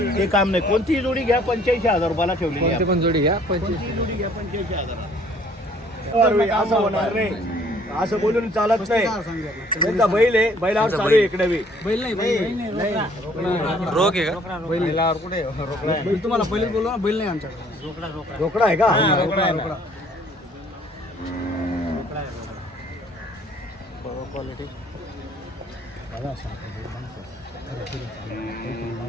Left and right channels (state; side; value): normal; both; correlation 0.59